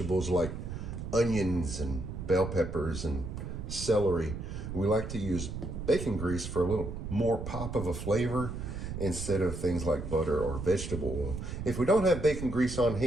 like onions and bell peppers and celery, we like to use bacon grease for a little more pop of a flavor instead of things like butter or vegetable oil. If we don't have bacon grease on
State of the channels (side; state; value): right; noise; rumble, 6 dB below the sound